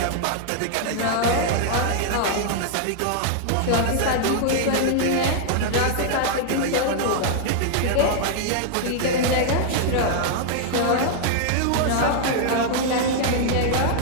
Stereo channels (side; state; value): both; different; correlation -0.01